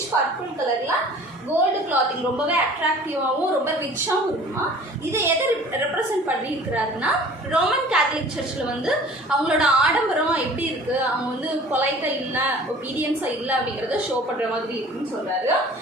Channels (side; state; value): both; normal; correlation 0.47